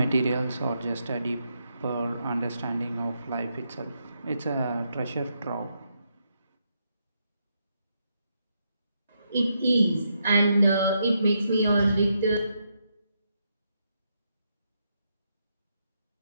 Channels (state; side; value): inverted; both; correlation -0.80